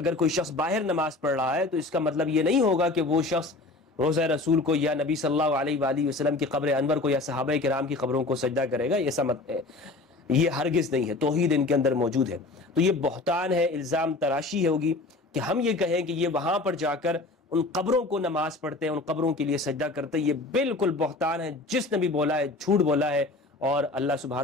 کوئی شخص باہر نماز پڑھ رہا ہے تو اس کا مطلب یہ نہیں ہوگا کہ وہ شخص روضہ رسول کو یا نبی صلی اللہ علیہ وآلہ وسلم کی قبر انور کو یا صحابہ کرام کی قبروں کو سجدہ کرے گا، ایسا مت ہے، یہ ہرگز نہیں ہے، توحید ان کے اندر موجود ہے۔ تو یہ بہتان ہے، الزام تراشی ہوگی کہ ہم یہ کہیں کہ یہ وہاں پر جا کر ان قبروں کو نماز پڑھتے ہیں، ان قبروں کے لیے سجدہ کرتے ہیں، یہ بالکل بہتان ہے۔ جس نے بھی بولا ہے جھوٹ بولا ہے، اور اللہ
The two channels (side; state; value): right; quieter; 3.2 dB